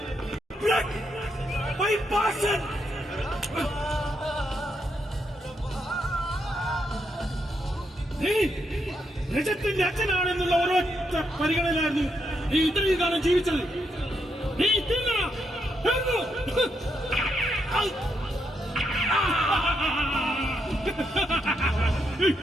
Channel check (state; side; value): normal; both; correlation 0.80